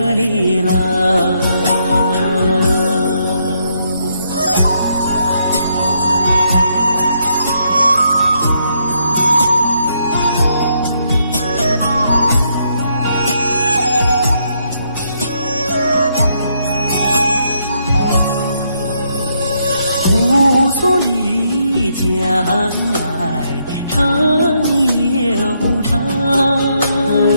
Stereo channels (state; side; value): inverted; both; correlation -0.75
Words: 哩啦。无所里将来长又长，